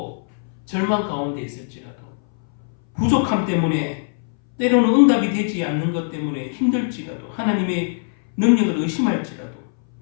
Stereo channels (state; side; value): silent; right; 61 dB below the other